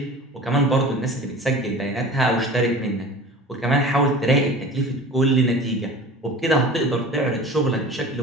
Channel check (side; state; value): both; normal; correlation 0.39